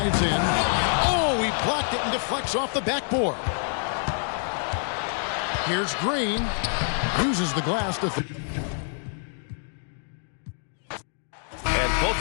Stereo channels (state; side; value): silent; right; 57 dB below the other